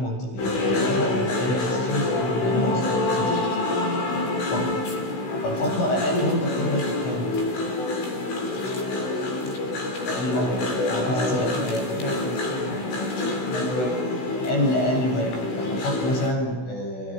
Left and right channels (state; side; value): late; right; 16 ms